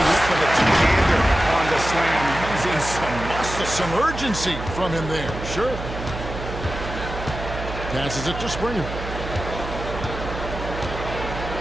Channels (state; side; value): noise; right; hum, 8 dB below the sound